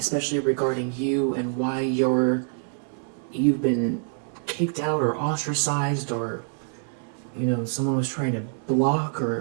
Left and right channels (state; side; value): silent; left; digital silence